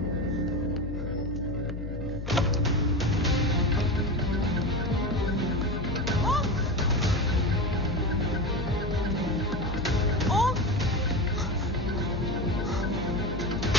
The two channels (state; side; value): noise; left; hum, 6 dB below the sound